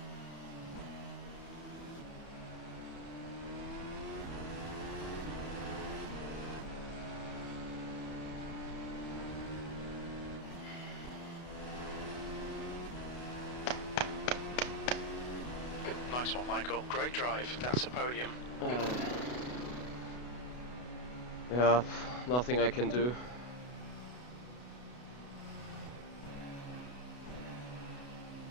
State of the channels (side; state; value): right; late; 32 ms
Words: Nice one, Michael. Great drive. That's a podium. Ja, nothing I can do.